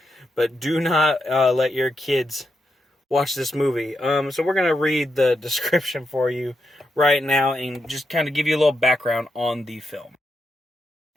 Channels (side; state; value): both; normal; correlation 0.84